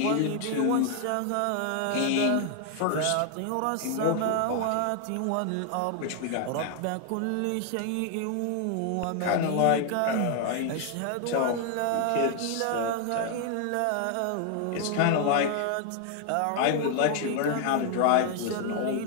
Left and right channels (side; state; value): both; different; correlation 0.00